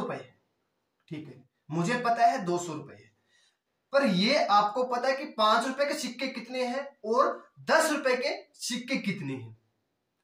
है। ठीक है, मुझे पता है 200 रुपए है, पर ये आपको पता है कि 5 रुपए के सिक्के कितने हैं और 10 रुपए के सिक्के कितने हैं।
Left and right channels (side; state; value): both; identical; correlation 1.00